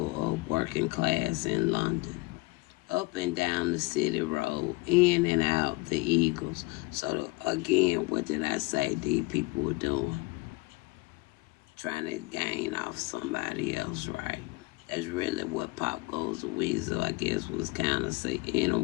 of working class in London, up and down the city road, in and out the Eagles. So again, what did I say these people were doing? Trying to gain off somebody else, right? That's really what Pop Goes the Weasel, I guess, was kind of in a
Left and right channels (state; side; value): quieter; right; 24.2 dB